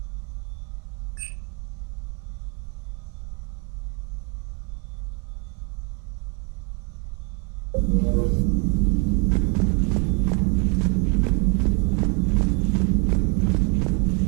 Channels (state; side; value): quieter; left; 33.3 dB